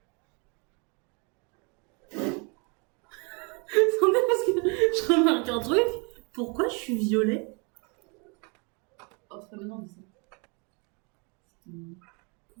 Attendez, parce que je remarque un truc. Pourquoi je suis violée? Oh, c'est pas maintenant, mais ça.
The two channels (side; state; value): left; quieter; 32.6 dB